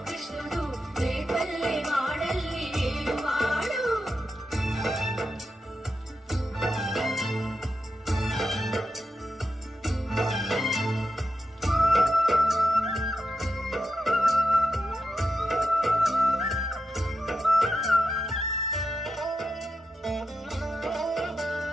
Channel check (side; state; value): both; normal; correlation 0.87